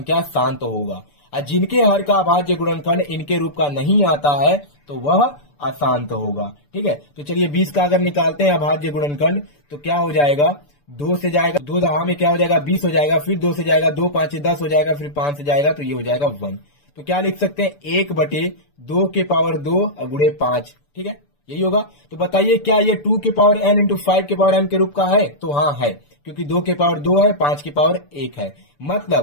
शांत होगा। और जिनके हर का अभाज्य गुणनखंड इनके रूप का नहीं आता है तो वह अशांत होगा। ठीक है, तो चलिए 20 का अगर निकालते हैं अभाज्य गुणनखंड, तो क्या हो जाएगा, 2 से जाएगा, 2 दहा में क्या हो जाएगा 20 हो जाएगा, फिर 2 से जाएगा, 2 5 10 हो जाएगा, फिर 5 से जाएगा तो ये हो जाएगा 1। तो क्या लिख सकते हैं, 1/2 के पावर 2 गुणे 5। ठीक है, यही होगा। तो बताइए क्या ये 2 के पावर n × 5 के पावर m के रूप का है, तो हाँ है, क्योंकि 2 के पावर 2 है, 5 के पावर 1 है,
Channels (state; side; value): late; right; 6.9 ms